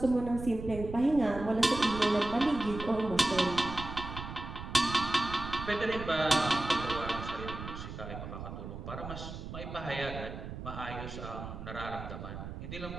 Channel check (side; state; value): right; noise; rumble, 9 dB below the sound